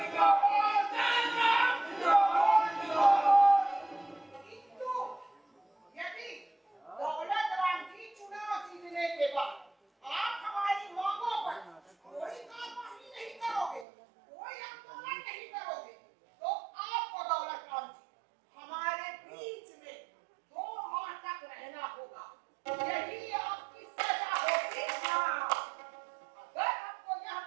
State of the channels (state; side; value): drops out; left; at 13.9 s